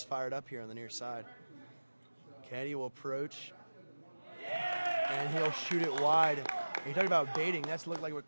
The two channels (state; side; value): inverted; both; correlation -1.00